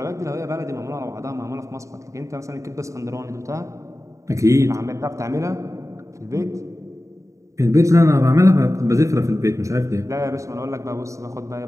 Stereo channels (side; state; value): left; late; 0.15 ms